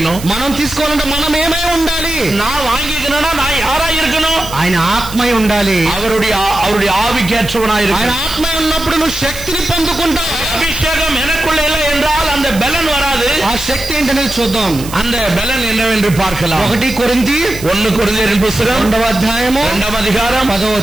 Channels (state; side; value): noise; right; hiss, 13 dB below the sound